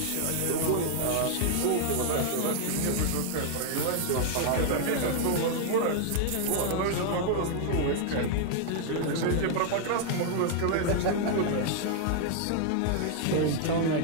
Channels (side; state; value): both; different; correlation 0.00